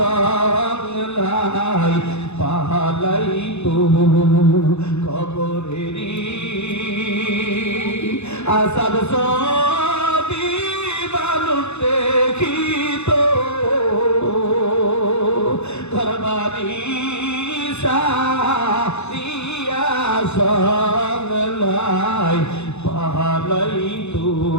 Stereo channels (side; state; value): right; late; 0.81 ms